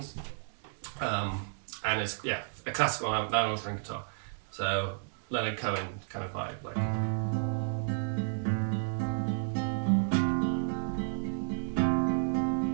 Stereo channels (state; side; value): silent; left; digital silence